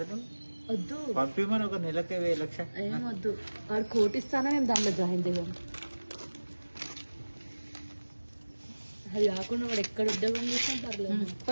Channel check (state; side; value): inverted; both; correlation -1.00